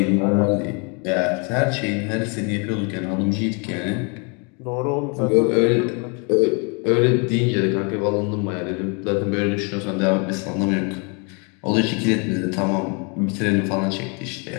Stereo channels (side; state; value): right; quieter; 34.9 dB